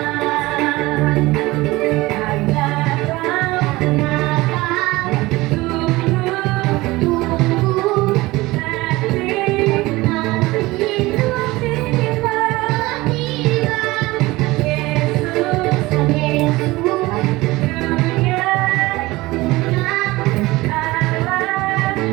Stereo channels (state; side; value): quieter; left; 20.1 dB